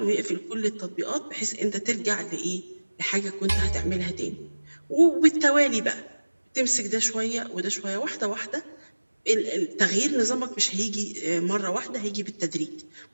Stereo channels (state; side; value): inverted; both; correlation -1.00